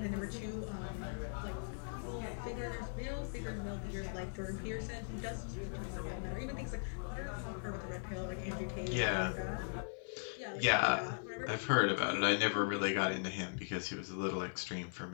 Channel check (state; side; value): silent; right; 52 dB below the other